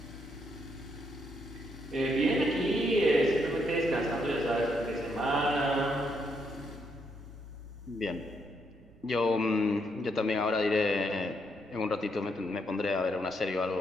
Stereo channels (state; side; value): noise; right; rumble, 25 dB below the sound